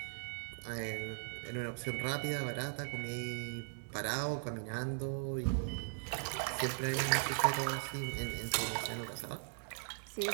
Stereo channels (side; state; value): left; silent; digital silence